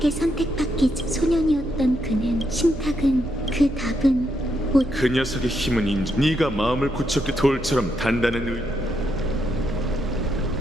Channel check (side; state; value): right; noise; hum, 12 dB below the sound